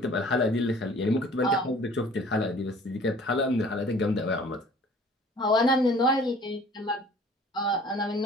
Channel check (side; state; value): both; normal; correlation 0.50